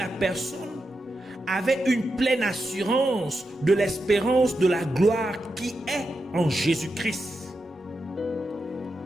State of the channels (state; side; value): normal; both; correlation 0.87